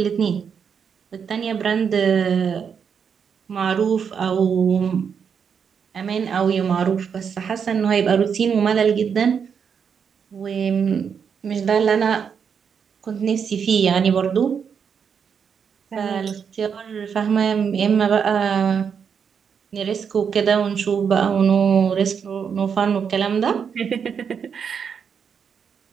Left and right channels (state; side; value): quieter; left; 6.9 dB